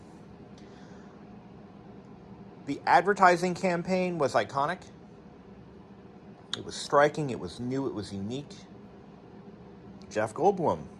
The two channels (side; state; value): both; identical; correlation 1.00